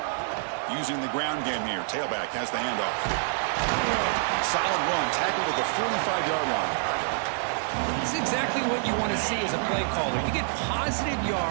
Using the ground game here. Tailback has the handoff. Solid run, tackled at the 45-yard line. It's exactly what you want to see as a play caller. You get positive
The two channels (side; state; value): left; silent; digital silence